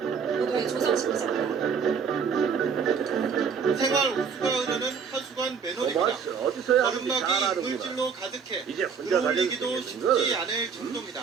보도에 조성식 기자입니다. 생활 우수가 흐르는 하수관 매너입니다. 토마스 어디서야 하는지 잘 거름막이 아는구나. 이물질로 가득해 이제 혼자 들어올리기도 다니는 쉽지 않을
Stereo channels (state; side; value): quieter; left; 6.3 dB